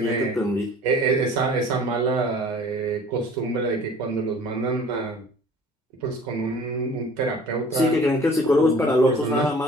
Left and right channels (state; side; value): normal; both; correlation 0.48